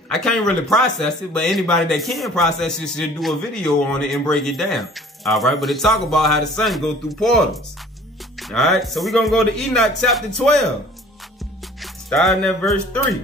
I can't really process it, but anybody that can process it should do a video on it and break it down, all right? But it talk about how the sun go through portals. All right, so we're going to go to Enoch chapter 12, starting at verse 3.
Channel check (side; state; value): both; normal; correlation 0.50